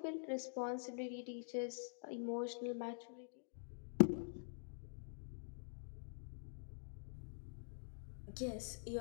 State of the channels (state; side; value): silent; right; digital silence